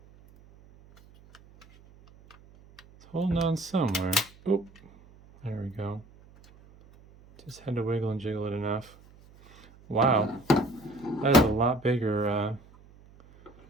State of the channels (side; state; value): right; noise; hum, 25 dB below the sound